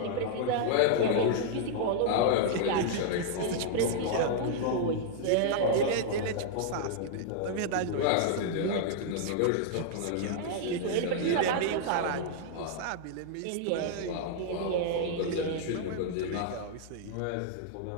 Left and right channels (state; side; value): different; both; correlation -0.01